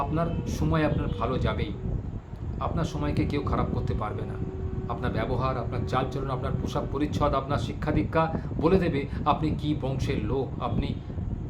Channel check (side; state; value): both; identical; correlation 1.00